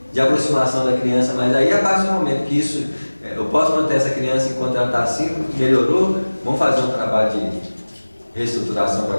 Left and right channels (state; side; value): inverted; both; correlation -1.00